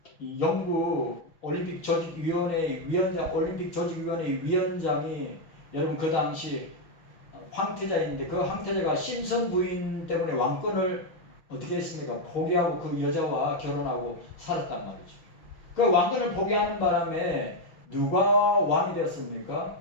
영국 올림픽 조직위원회 위원장이, 여러분 그 당시 황태자인데 그 황태자가 심선 부인 때문에 왕권을 어떻게 했습니까? 포기하고 그 여자와 결혼하고 살았단 말이죠. 그 왕권을 포기하는 바람에 누가 왕이 되었습니까?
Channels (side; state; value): right; late; 6.6 ms